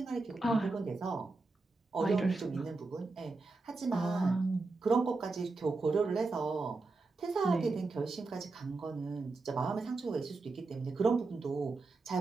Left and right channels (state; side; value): quieter; left; 3.6 dB